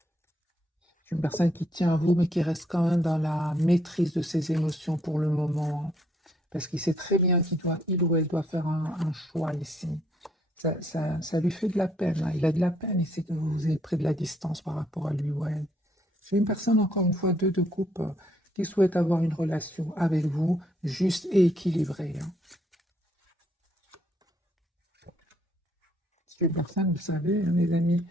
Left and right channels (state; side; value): normal; both; correlation 0.69